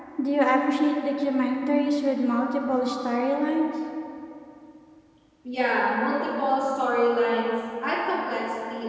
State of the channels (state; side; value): identical; both; correlation 1.00